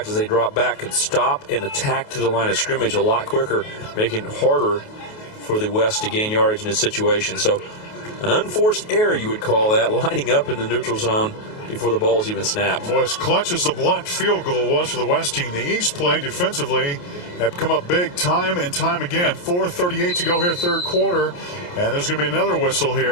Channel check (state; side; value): late; right; 28 ms